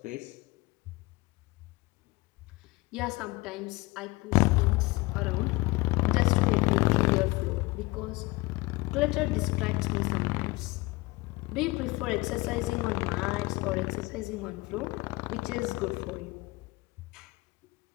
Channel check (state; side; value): quieter; right; 22.5 dB